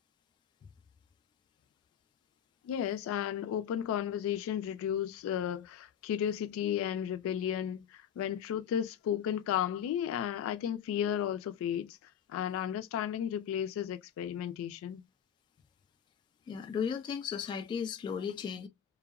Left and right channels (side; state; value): right; quieter; 9.1 dB